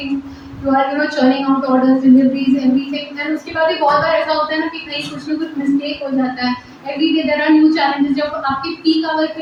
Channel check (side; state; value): both; identical; correlation 1.00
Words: you are churning out orders, deliveries, everything. And उसके बाद भी बहुत बार ऐसा होता है ना कि कहीं कुछ ना कुछ मिस्टेक हो जाता है. Every day there are new challenges. जब आपके पीक आवर